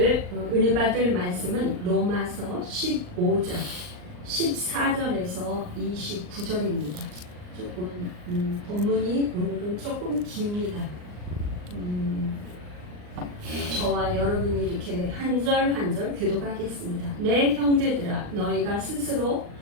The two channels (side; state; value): left; late; 39 ms